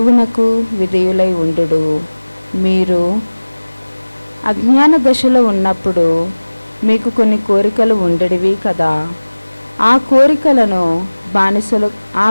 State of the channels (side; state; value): both; inverted; correlation -1.00